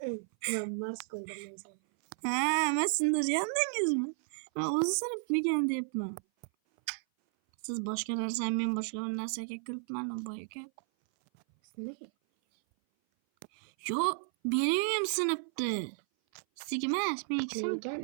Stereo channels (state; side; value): silent; left; 56 dB below the other